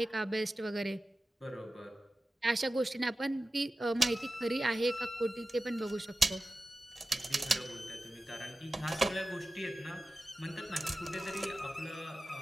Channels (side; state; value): both; normal; correlation 0.94